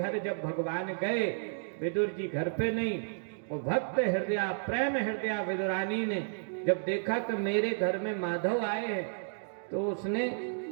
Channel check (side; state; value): left; silent; digital silence